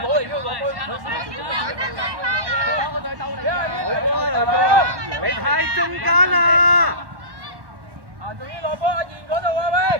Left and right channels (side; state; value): left; late; 1.1 ms